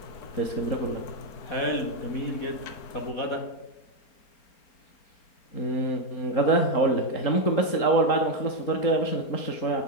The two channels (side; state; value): right; late; 4.4 ms